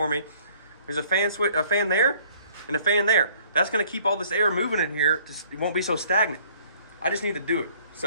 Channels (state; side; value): inverted; both; correlation -0.58